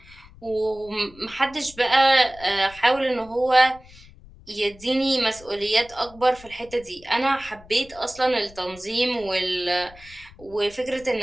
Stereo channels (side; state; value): left; noise; rumble, 22 dB below the sound